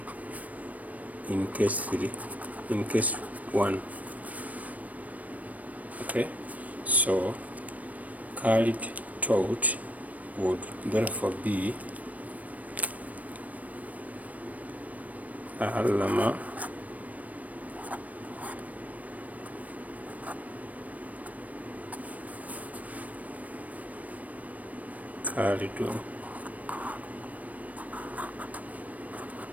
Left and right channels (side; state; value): left; late; 0.071 ms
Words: in case 1. Okay, so Khalid taught would therefore be Allama Khalidun.